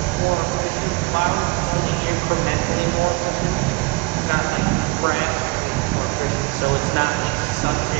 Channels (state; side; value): quieter; left; 25.7 dB